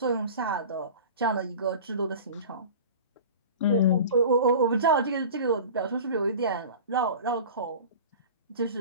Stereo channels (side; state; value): both; inverted; correlation -0.37